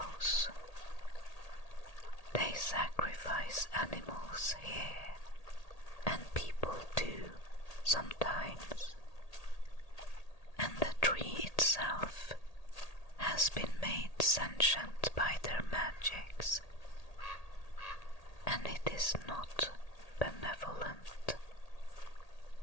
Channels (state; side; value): late; right; 1.8 ms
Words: They sacrifice animals here, and people too, sometimes. And the tree itself has been made sentient by their magics, and it is not benevolent.